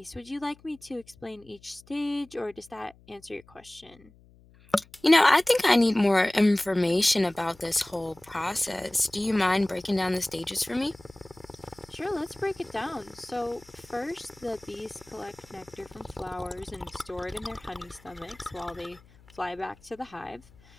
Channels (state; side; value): noise; left; hum, 26 dB below the sound